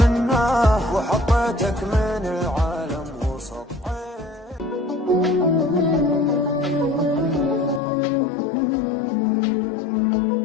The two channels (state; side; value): drops out; right; at 7.8 s